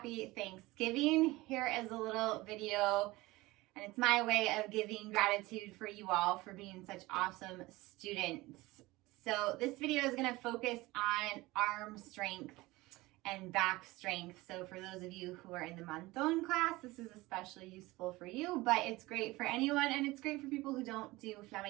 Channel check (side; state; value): left; quieter; 20.4 dB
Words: Thanksgiving. Here is a little video and it's my way of giving gratitude for you all for being such awesome students. So this video is going to focus on arm strength and back strength. So for those of you who are in the Monton class, this is especially useful for you, but it's great for anyone and it's great for people who don't do